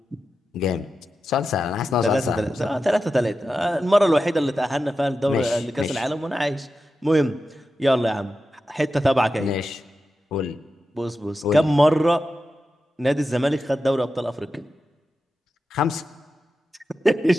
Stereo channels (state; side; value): normal; both; correlation 0.91